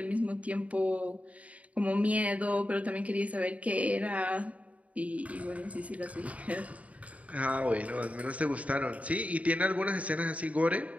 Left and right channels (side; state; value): left; late; 0.068 ms